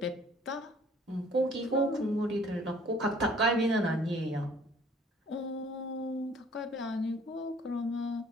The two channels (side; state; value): both; normal; correlation 0.56